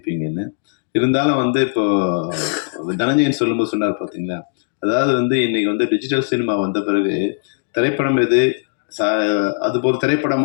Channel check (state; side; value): silent; right; digital silence